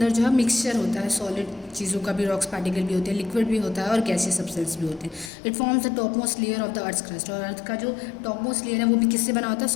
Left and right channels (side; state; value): right; drops out; at 5.3 s